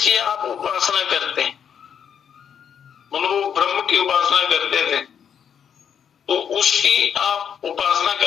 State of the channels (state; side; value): quieter; right; 8.0 dB